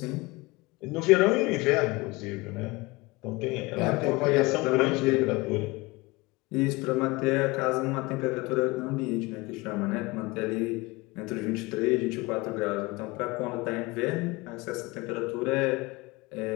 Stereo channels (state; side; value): quieter; right; 23.1 dB